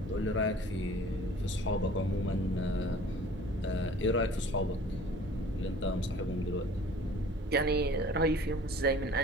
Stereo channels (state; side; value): normal; both; correlation 0.48